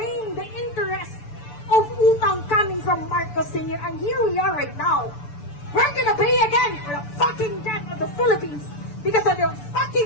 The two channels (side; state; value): right; late; 6.9 ms